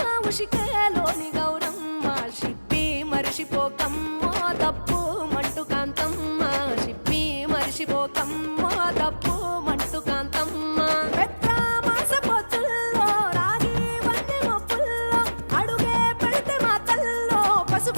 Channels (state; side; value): inverted; both; correlation -1.00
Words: ఉషికేలోని గౌరమ్మ షిప్పి మరిషిపోకమ్మో తప్పు మంటు కాంతమ్మ షిప్పి మరిషిపోకమ్మో తప్పు మంటు కాంతమ్మ పెద్ద మాస పొత్తుల్లో రాగి వంటి మొప్పుల్లో అడుగే పెడితే మాతల్లో